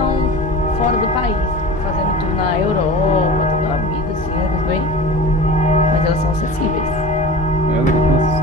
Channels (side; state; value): both; normal; correlation 0.35